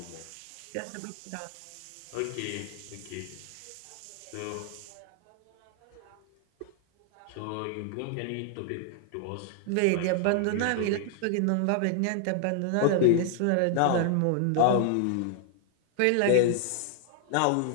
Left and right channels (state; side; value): different; both; correlation 0.00